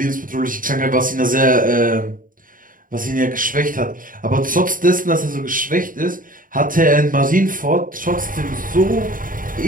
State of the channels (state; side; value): late; left; 0.40 ms